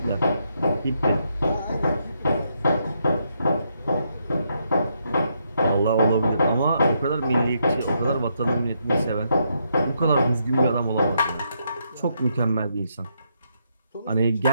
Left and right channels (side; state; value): both; inverted; correlation -0.78